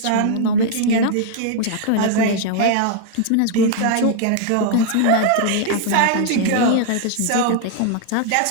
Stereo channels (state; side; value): different; both; correlation 0.00